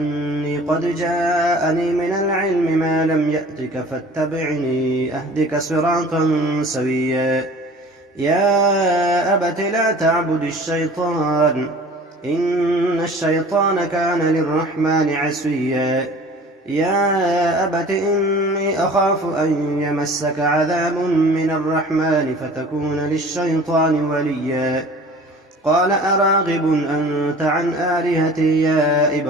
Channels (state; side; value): normal; both; correlation 0.45